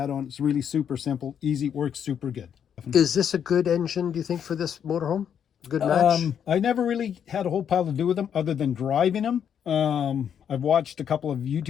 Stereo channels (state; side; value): quieter; right; 8.4 dB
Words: It's really super simple, easy, works super good. Is this a good engine, do you think, for this motorhome? Good match? I never really had a whole pile to do with them other than driving them. I've watched a couple of